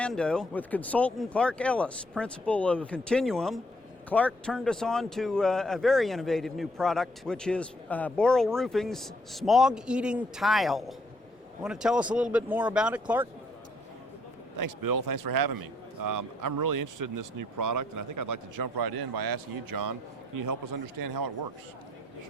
with consultant Clark Ellis, principal of Continuum. Clark turned us on to a very innovative new product, which is Boral Roofing's Smog-Eating tile. Want to tell us a little bit more about it, Clark? Thanks, Bill. Thanks for having me. I'm really interested in this new product, and I think I'd like to jump right in by asking you, John, can you help us understand how it works?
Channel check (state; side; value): normal; both; correlation 0.69